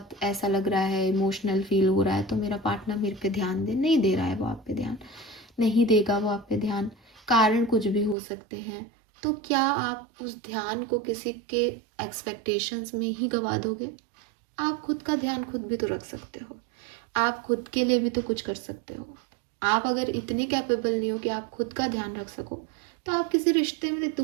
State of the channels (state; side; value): drops out; left; at 8.2 s